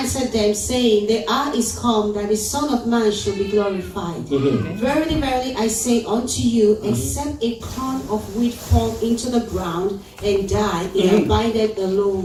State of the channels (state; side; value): identical; both; correlation 1.00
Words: them, saying, the hour is come, that the Son of Man should be glorified. Verily, verily, I say unto you, except a corn of wheat fall into the ground and die, it abideth